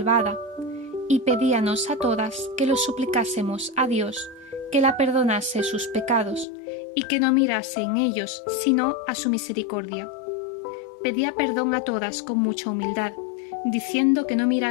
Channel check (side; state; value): right; drops out; at 6.5 s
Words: y pedíanos a todas que lo suplicásemos a Dios que la perdonase sus pecados y que no mirase en ellos sino a su misericordia. Pedía perdón a todas con mucha humildad, diciendo que no